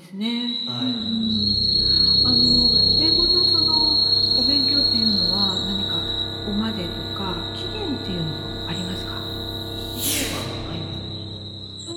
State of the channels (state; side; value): identical; both; correlation 1.00